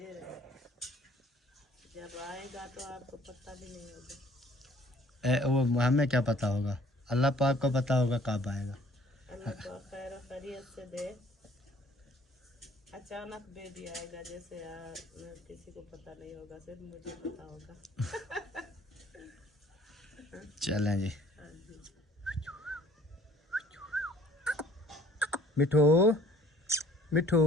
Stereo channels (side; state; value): both; normal; correlation 0.56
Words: है, जब आएगा तो आपको पता भी नहीं होगा। वो हमें क्या पता होगा, अल्लाह पाक को पता होगा कब आएगा। अल्लाह तो खैर खैरियत से दे। अचानक बेबी आएगा, जैसे किसी को पता नहीं होगा, सिर्फ मुझे पता होगा। चलें जी। हाँ जी। मिठू मिठू